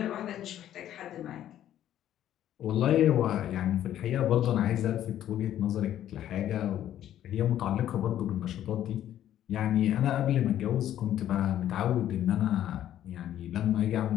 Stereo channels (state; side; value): quieter; right; 11.6 dB